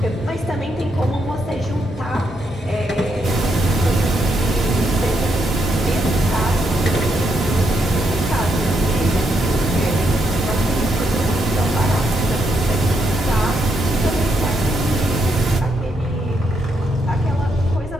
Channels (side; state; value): both; normal; correlation 0.78